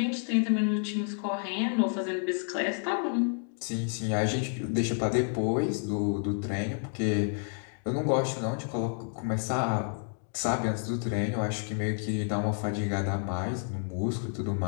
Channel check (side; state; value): right; silent; 58 dB below the other